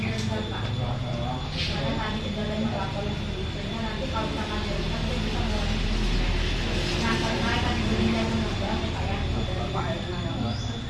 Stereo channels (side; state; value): both; identical; correlation 1.00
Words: Pak. Karena tadi kendalanya melapor sehingga nanti kalau misalkan direndam itu bisa mengurangi fungsinya. Nah karena tadi benihnya mengembang ya Pak ya.